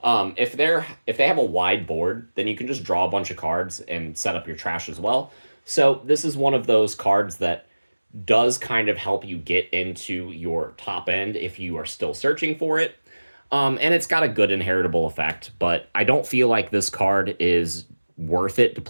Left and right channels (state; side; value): inverted; both; correlation -1.00